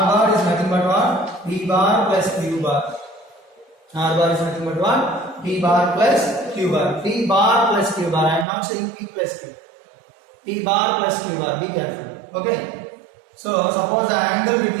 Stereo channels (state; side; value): drops out; left; at 8.5 s